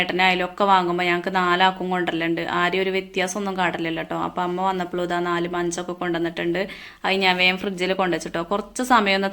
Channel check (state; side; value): identical; both; correlation 1.00